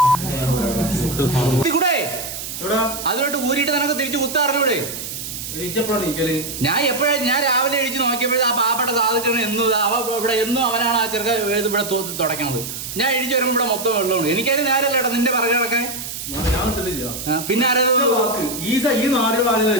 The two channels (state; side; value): noise; right; hiss, 7 dB below the sound